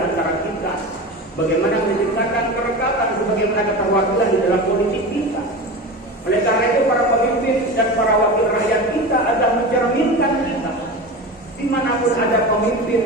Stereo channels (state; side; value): normal; both; correlation 0.28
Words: antara kita. Bagaimana menciptakan kerekatan sebagaimana keterwakilan di dalam politik kita. Oleh karena itu para pemimpin dan para wakil rakyat kita adalah mencerminkan kita. Dimanapun ada pemimpin,